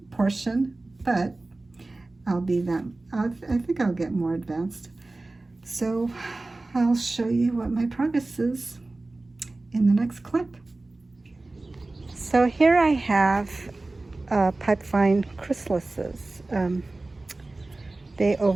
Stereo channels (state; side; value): quieter; left; 3.1 dB